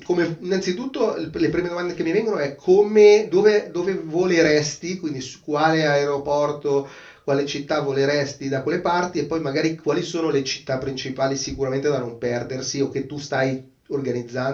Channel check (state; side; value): identical; both; correlation 1.00